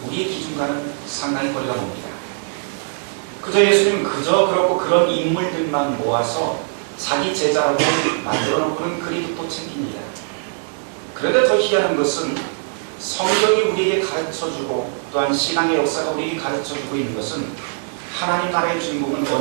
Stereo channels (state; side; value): silent; left; 65 dB below the other